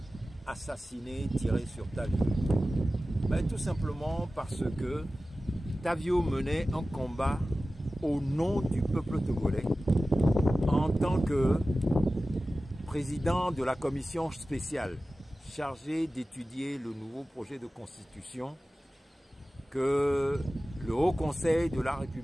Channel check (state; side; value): normal; both; correlation 0.96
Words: assassinés, tirés sur Tavio? Tout simplement parce que Tavio menait un combat au nom du peuple togolais en tant que président de la commission spéciale chargée d'étudier le nouveau projet de constitution que le Haut Conseil de la